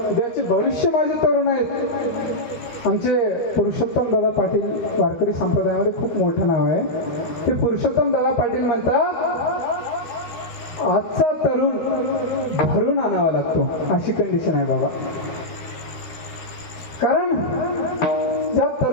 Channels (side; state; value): right; late; 12 ms